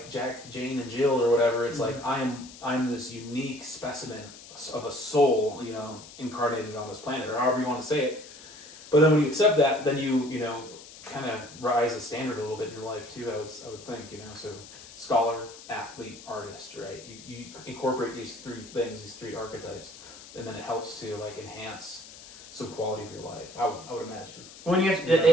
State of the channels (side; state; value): left; noise; hiss, 17 dB below the sound